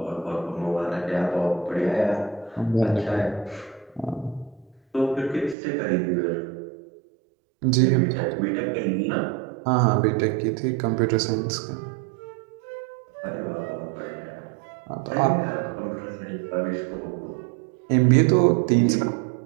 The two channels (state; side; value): drops out; left; at 5.6 s